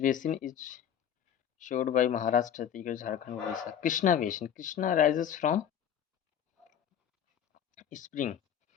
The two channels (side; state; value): right; quieter; 9.2 dB